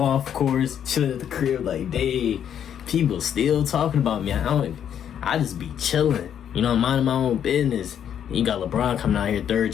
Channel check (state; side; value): quieter; right; 9.2 dB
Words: course, chilling at the crib like, dang, people still talking about me. I just be chilling. You know, minding my own business. You got LeBron coming out here, 3rd